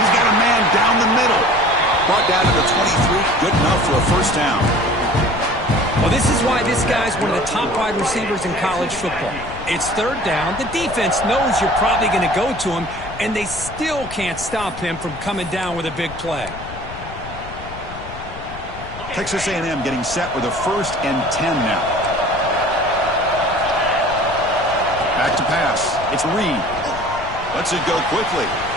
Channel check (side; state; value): left; noise; rumble, 14 dB below the sound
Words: got a man down the middle. Brought down to the 23. Good enough for a 1st down. Well, this is why this guy's one of the top wide receivers in college football. It's 3rd down. The defense knows you're probably going to go to him, and they still can't stop him from coming down with a big play. Texas A&M getting set with a 1st and 10 now. Back to pass. It's Reed. Lets it go quickly.